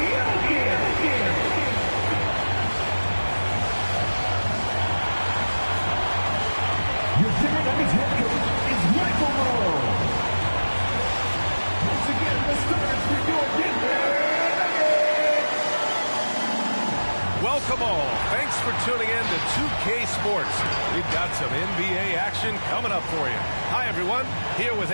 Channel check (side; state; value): both; inverted; correlation -1.00